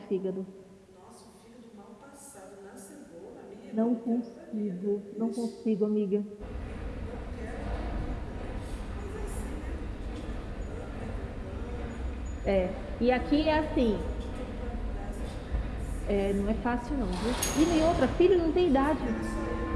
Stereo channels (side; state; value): both; identical; correlation 1.00